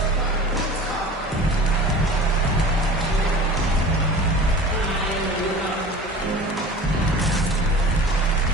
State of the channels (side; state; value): both; normal; correlation 0.39